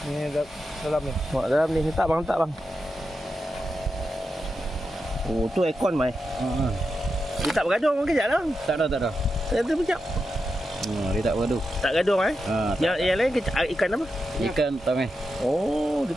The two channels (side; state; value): both; normal; correlation 0.88